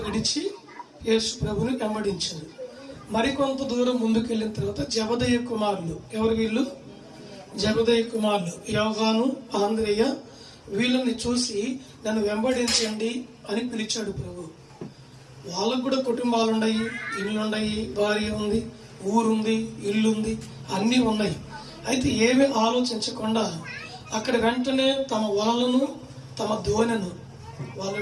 విడిచి యేసు ప్రభుని వెంబడించారు. మరికొంత దూరం ముందుకెళ్ళిన తర్వాత జబదయి కుమారులు, ఎవరు వీళ్ళు? జబదయి కుమారులు యోహాను, ఆంద్రేయ, వీళ్ళని చూసి నన్ను వెంబడించండి అని పిలిచాడు ప్రభు. వాళ్ళకు కూడా కుటుంబాలు ఉన్నాయి, ఇల్లున్నాయి, భార్య ఉంది, ఊరుంది, ఇల్లుంది, అన్నీ ఉన్నాయి. అయితే ఏమీ ఆలోచించకుండా అక్కడ వెంటనే తమ వలలను, తమ దోణెను, వాళ్ళు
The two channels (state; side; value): identical; both; correlation 1.00